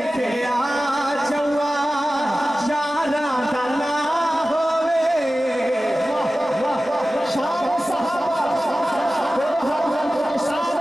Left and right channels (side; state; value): both; normal; correlation 0.95